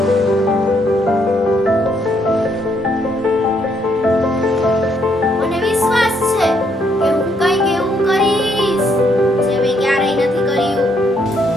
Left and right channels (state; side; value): normal; both; correlation 0.72